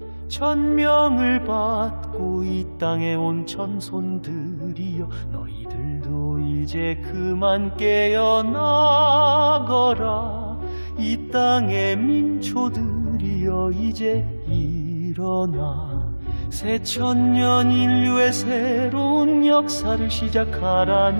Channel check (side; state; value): both; inverted; correlation -1.00